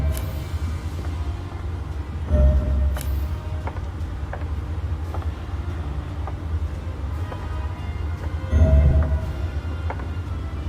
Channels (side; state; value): both; identical; correlation 1.00